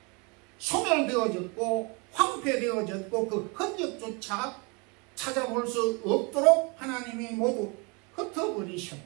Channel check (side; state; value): left; quieter; 30.8 dB